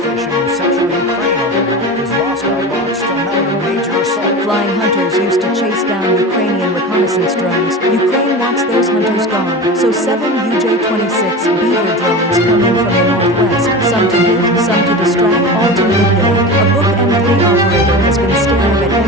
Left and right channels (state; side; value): normal; both; correlation 0.29